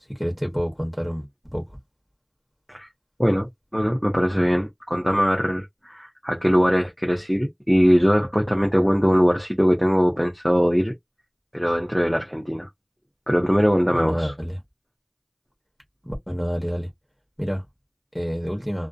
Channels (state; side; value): identical; both; correlation 1.00